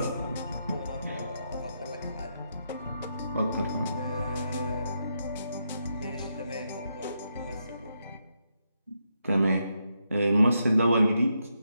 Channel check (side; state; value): both; inverted; correlation -0.82